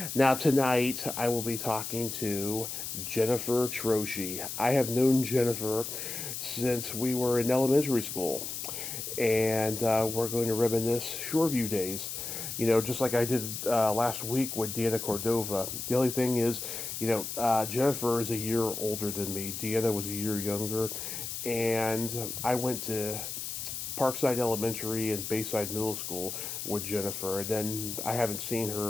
Now tonight I will be talking to Jeniffer Troche. I have known Jeniffer since we were in elementary school, and we're going to reminisce Shoreview days. You know, just like I did last week with Deanna Cordova. The only thing is, Jeniffer is a year older than me. Deanna was a year younger, and I went to Parkside Elementary and Bayside Middle School with Jeniffer, and then I haven't seen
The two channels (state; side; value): noise; left; hiss, 6 dB below the sound